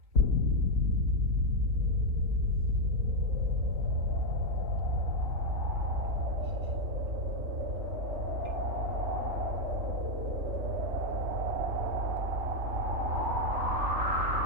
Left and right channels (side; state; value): left; late; 3.4 ms